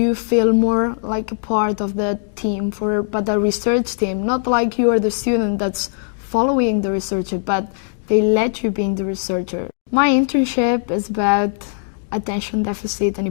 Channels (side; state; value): right; silent; digital silence